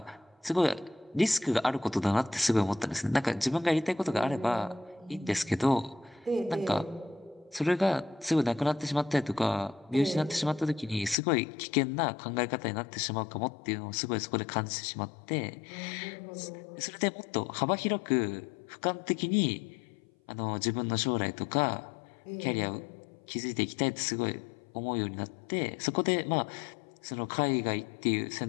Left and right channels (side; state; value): right; drops out; at 11.2 s